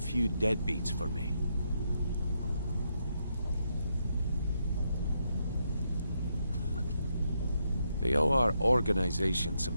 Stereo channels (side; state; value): both; inverted; correlation -0.80